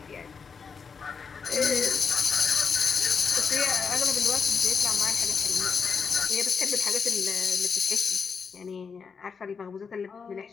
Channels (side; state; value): right; quieter; 5.7 dB